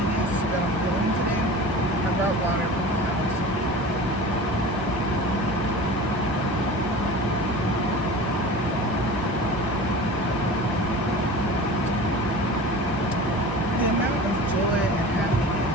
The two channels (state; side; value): normal; both; correlation 0.36